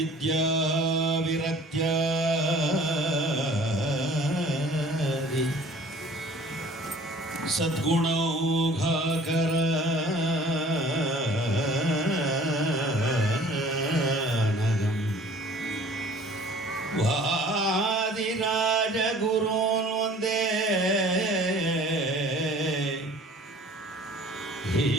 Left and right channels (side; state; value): both; normal; correlation 0.50